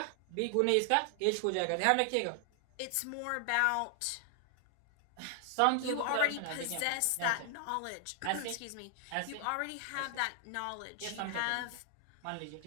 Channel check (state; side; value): different; both; correlation 0.00